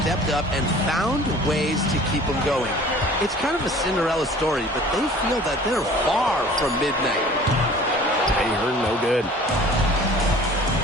up and found ways to keep them going. It's kind of a Cinderella story, but they feel that they're far from midnight. Ahern, no good.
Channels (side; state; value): both; normal; correlation 0.47